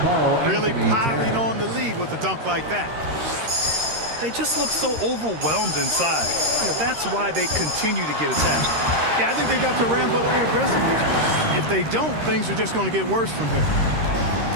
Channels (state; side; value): late; left; 13 ms